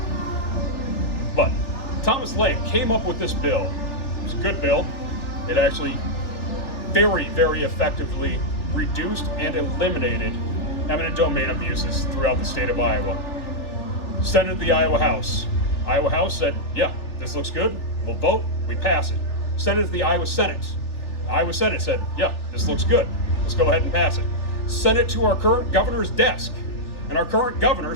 But Thomas Lane came up with this bill. It was a good bill. It actually very, very effectively reduced and eliminated eminent domain abuses throughout the state of Iowa. Sent it to the Iowa House. Iowa House said, yeah, this looks good. We'll vote. We pass it. Sent it to the Iowa Senate. Iowa Senate said, yeah, this looks good. Let's go ahead and pass it. Sent it to our current governor's desk. And our current governor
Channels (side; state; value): right; late; 3.4 ms